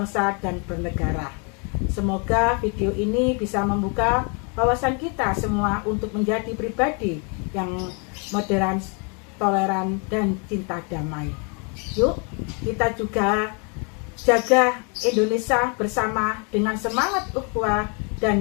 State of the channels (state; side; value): quieter; right; 35.6 dB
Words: dan bernegara. Semoga video ini bisa membuka wawasan kita semua untuk menjadi pribadi yang moderan, toleran, dan cinta damai. Yuk, kita juga jaga Indonesia bersama dengan semangat ukhuwah